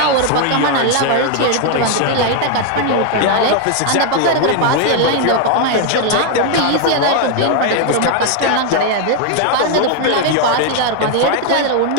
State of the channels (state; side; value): different; both; correlation 0.00